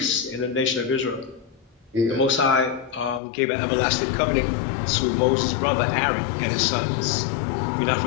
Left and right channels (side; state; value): right; drops out; at 3.2 s